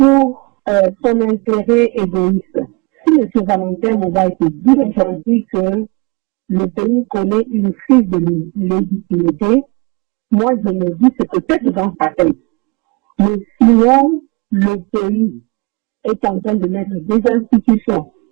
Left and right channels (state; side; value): quieter; left; 28.2 dB